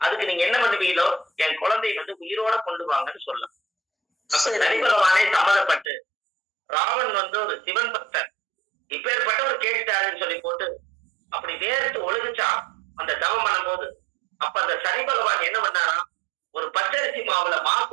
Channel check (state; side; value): drops out; left; at 5.9 s